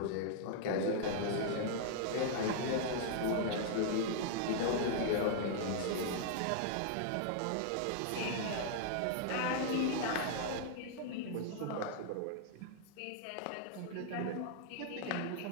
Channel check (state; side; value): different; both; correlation -0.01